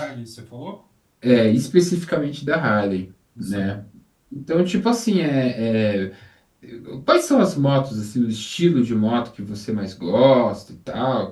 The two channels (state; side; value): identical; both; correlation 1.00